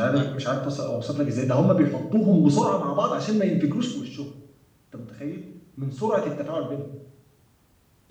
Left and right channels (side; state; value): both; identical; correlation 1.00